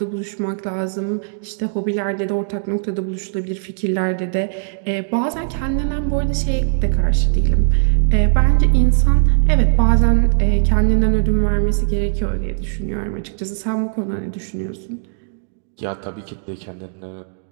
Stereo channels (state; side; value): silent; left; digital silence